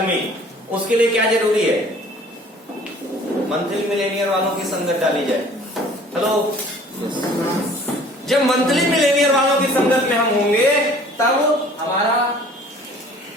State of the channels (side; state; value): both; normal; correlation 0.51